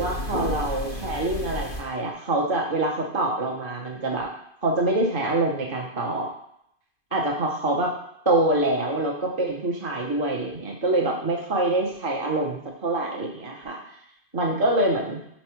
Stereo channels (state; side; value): late; right; 2.5 ms